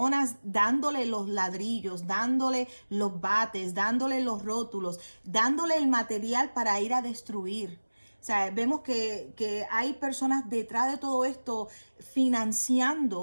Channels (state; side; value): inverted; both; correlation -1.00